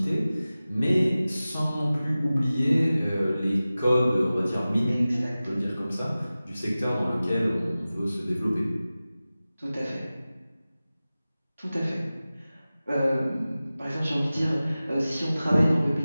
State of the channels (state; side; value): inverted; both; correlation -0.97